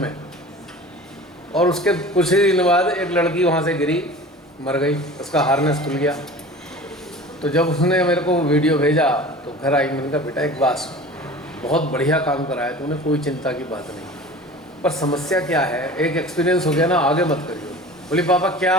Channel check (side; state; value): both; normal; correlation 0.39